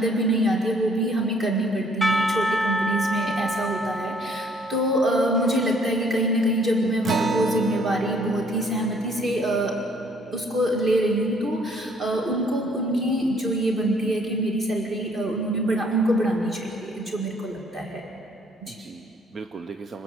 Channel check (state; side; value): normal; both; correlation 0.62